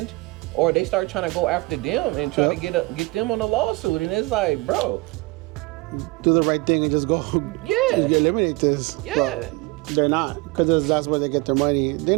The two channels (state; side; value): quieter; left; 24.1 dB